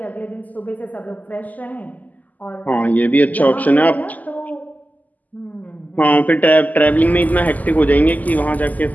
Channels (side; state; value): right; late; 0.080 ms